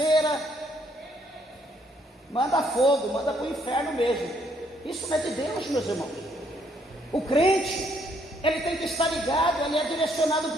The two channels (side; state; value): both; normal; correlation 0.69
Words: Manda fogo, manda para o inferno mesmo. Isso não é de Deus, meus irmãos. O crente, ele tem que estar ligado, ele é direcionado